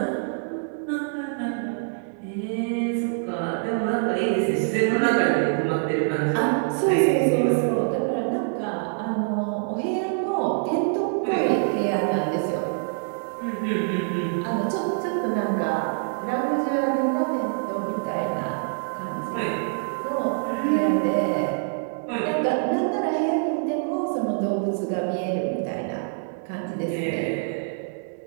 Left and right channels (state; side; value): silent; left; 62 dB below the other